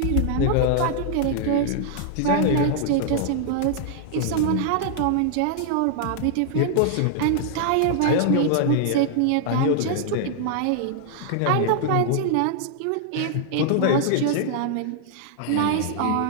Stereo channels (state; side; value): different; both; correlation -0.01